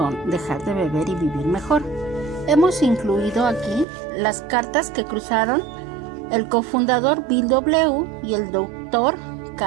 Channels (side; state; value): left; drops out; at 3.9 s